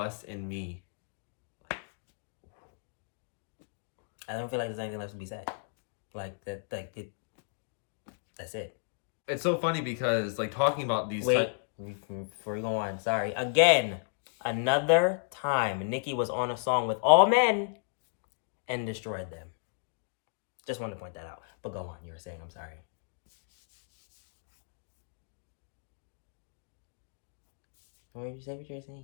me. I don't feel like there's anything left to be said. Like that, that's it. It's so funny because like talking about these. Before we go on, sorry again. Another time, Nicki was on a song with all men and destroyed them. Just wanted to point that out. But go on. You were saying, I'm sorry. What did you say? What you were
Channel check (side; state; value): right; silent; digital silence